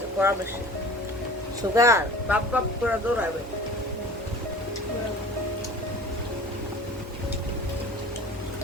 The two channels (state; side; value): normal; both; correlation 0.42